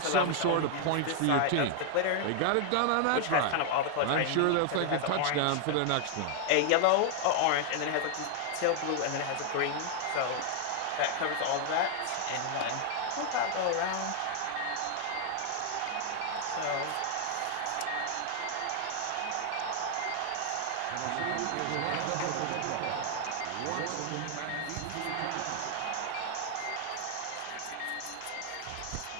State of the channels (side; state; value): both; different; correlation 0.00